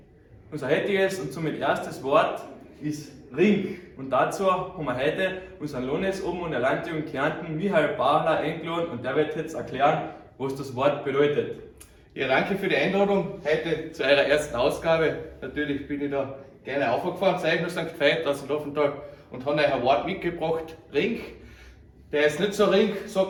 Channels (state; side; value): identical; both; correlation 1.00